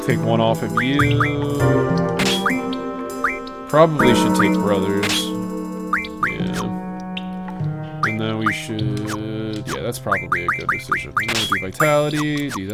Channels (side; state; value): both; identical; correlation 1.00